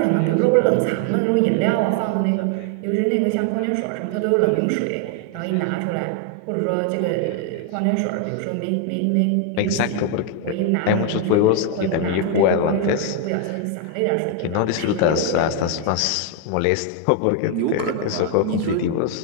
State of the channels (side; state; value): both; different; correlation 0.00